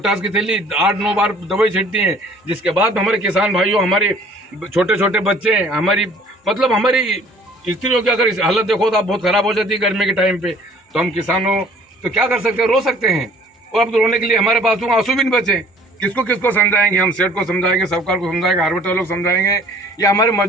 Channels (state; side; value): normal; both; correlation 0.54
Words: की थैली 8-9 बार दवाई छिड़ती हैं। जिसके बाद हमारे किसान भाइयों, हमारे छोटे छोटे बच्चे, हमारी स्त्रियों की अगर हालत देखो तो आप बहुत खराब हो जाती है गर्मी के टाइम पे। तो हम किसानों तो क्या कर सकते हैं, रो सकते हैं। और अब तो रोने के लिए हमारे पास तो आंसू भी नहीं बचे। किसको समझाएंगे हम? सेठ को समझाएंगे, सरकार को समझाएंगे, हार्वेस्टर लोग समझाएंगे, या हमारे